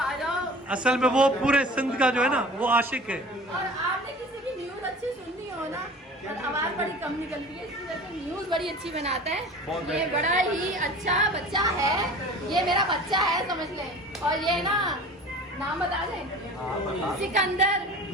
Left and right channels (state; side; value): normal; both; correlation 0.40